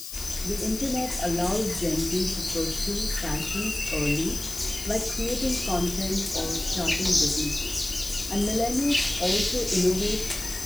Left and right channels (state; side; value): noise; left; hiss, 10 dB below the sound